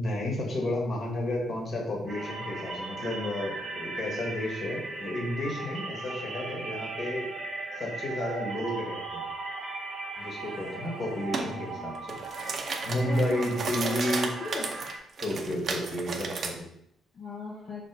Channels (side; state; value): both; normal; correlation 0.77